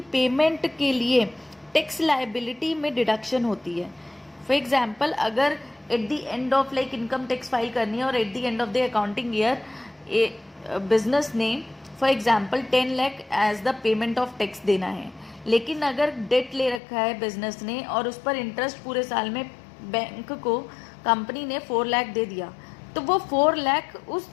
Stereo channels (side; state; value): right; drops out; at 16.8 s